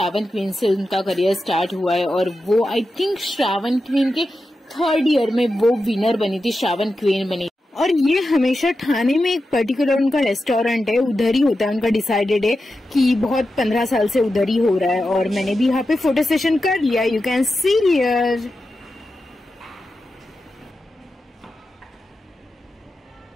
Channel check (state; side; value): normal; both; correlation 0.90